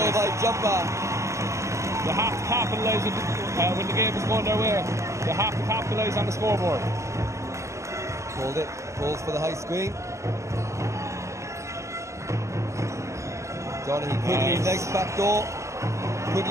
by Jumper. They have to capitalise when the game is going their way. They have to capitalise on the scoreboard. Called it. Calls for the high screen. Donaghy Quigley, nice back door.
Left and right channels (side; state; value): left; late; 0.14 ms